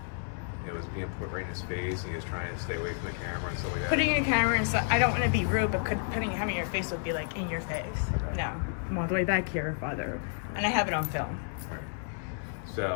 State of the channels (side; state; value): right; silent; 57 dB below the other